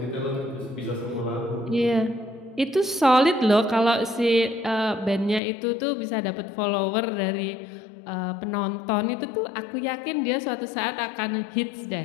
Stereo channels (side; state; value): right; drops out; at 5.4 s